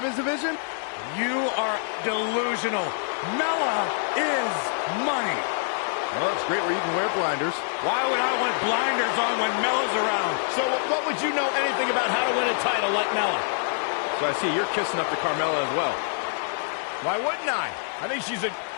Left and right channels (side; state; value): right; silent; 61 dB below the other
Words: division? You are delusional. Mella is money. Well, it's great where you can wear blinders. Why would I want blinders on when Mella's around? So what would you know anything about how to win a title like Mella? So I see you're kissing up to Carmella as well. Why wouldn't I? I think she's an